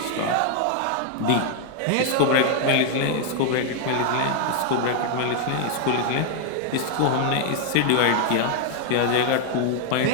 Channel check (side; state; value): both; different; correlation 0.00